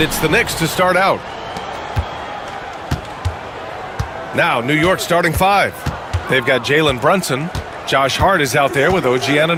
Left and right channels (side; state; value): both; identical; correlation 1.00